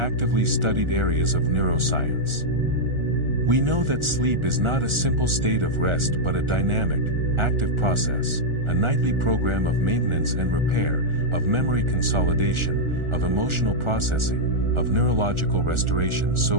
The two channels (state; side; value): late; left; 1.4 ms